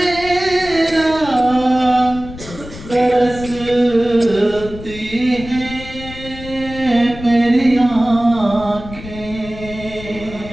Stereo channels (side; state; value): left; noise; rumble, 14 dB below the sound